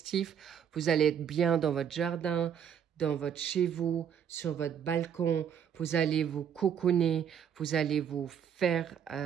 vous allez être bien dans votre jardin, dans votre chez vous, sur votre balcon. Vous allez vous cocooner, vous allez vous faire,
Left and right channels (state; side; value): quieter; left; 8.4 dB